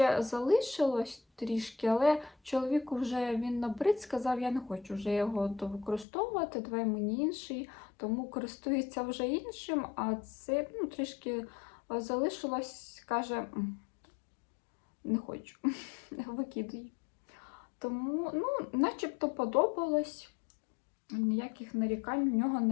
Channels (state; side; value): drops out; right; at 6.1 s